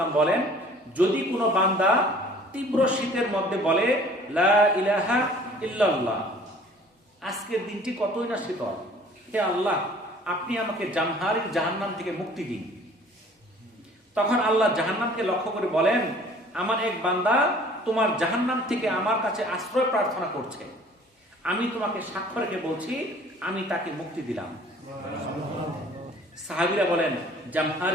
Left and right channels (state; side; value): normal; both; correlation 0.51